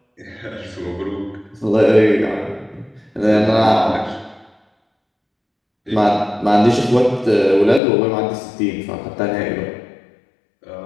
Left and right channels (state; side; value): drops out; right; at 7.8 s